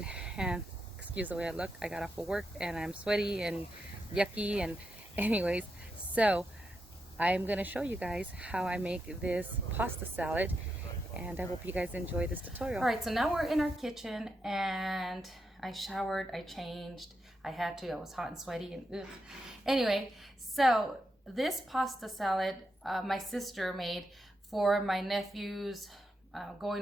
and excuse the way I look. I got off of work and I'm sweaty and yucky, and anyways, so I'm gonna show you guys how I make this pasta salad, and I hope you guys enjoy this tutorial. All right, so now we're in our kitchen, and I showered, I changed, I had to, I was hot and sweaty, and ugh. Anyway, so this pasta salad my sister made for my nephew's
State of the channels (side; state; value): both; normal; correlation 0.85